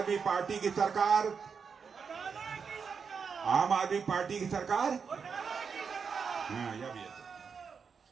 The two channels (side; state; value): left; quieter; 6.0 dB